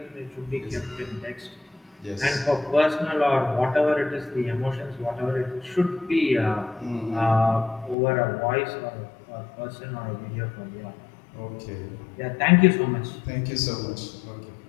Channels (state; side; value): drops out; right; at 8.0 s